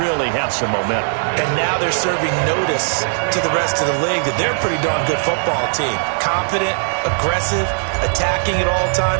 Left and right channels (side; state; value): left; silent; 61 dB below the other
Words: have some momentum. And now they're serving notice to the rest of the league that they're a pretty darn good football team. Confident, aggressive, attacking at all